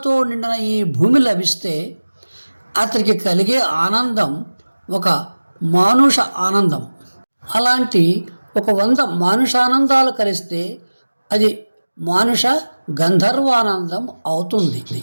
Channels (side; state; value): both; inverted; correlation -1.00